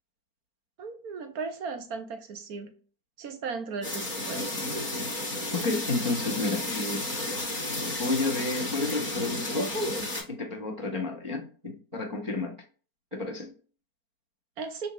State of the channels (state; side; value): late; left; 4.4 ms